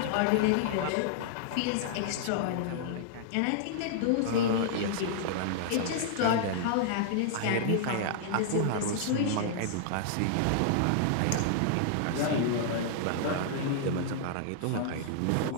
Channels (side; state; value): both; different; correlation -0.01